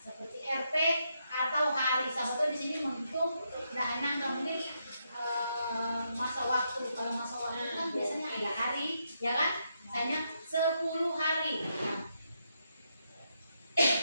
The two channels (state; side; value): inverted; both; correlation -0.80